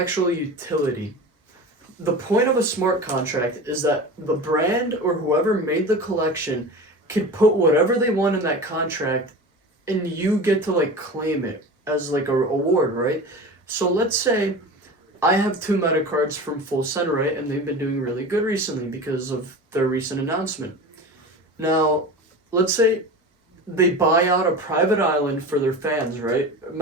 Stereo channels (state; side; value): normal; both; correlation 0.32